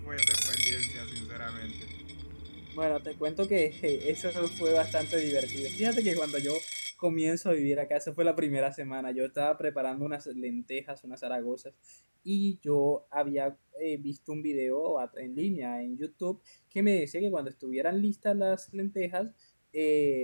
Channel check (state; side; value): inverted; both; correlation -1.00